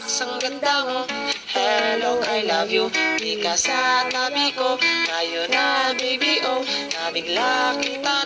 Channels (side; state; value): both; identical; correlation 1.00